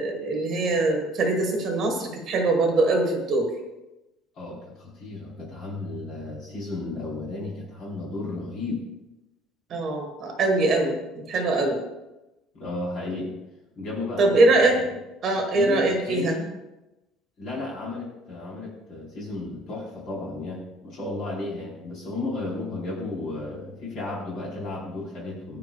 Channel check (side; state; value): both; normal; correlation 0.59